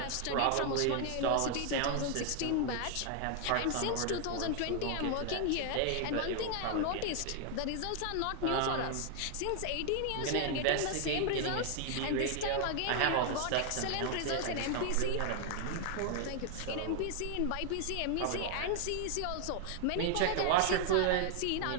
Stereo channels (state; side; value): different; both; correlation 0.00